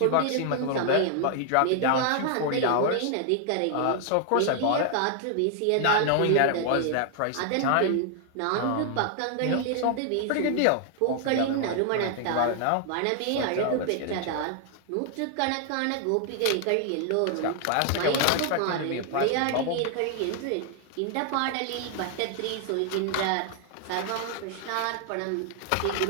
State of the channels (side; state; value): both; different; correlation 0.00